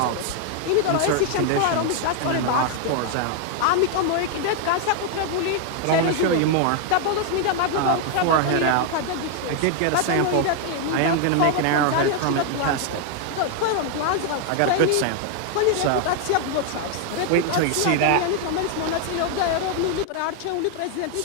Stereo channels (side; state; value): both; different; correlation 0.00